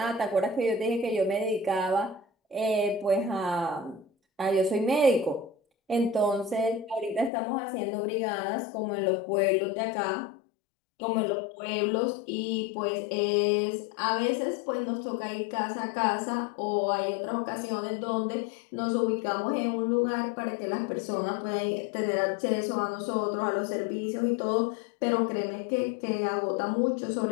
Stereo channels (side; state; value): right; drops out; at 7.3 s